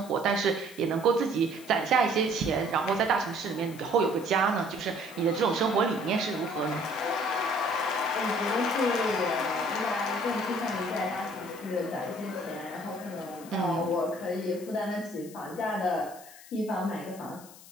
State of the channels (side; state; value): left; noise; hiss, 19 dB below the sound